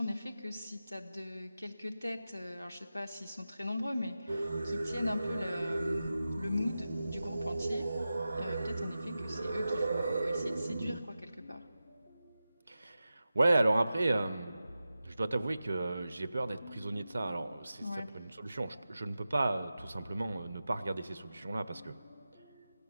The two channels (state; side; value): inverted; both; correlation -0.93